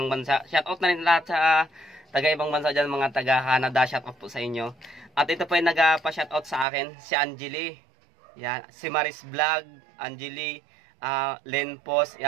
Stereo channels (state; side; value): drops out; left; at 6.7 s